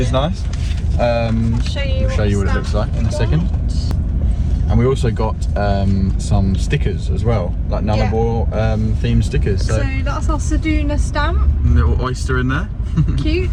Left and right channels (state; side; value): identical; both; correlation 1.00